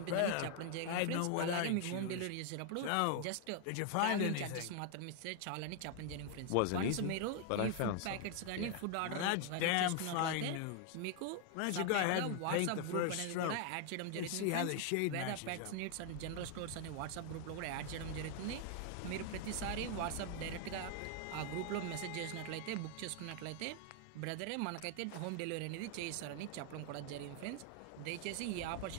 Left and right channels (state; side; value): different; both; correlation 0.00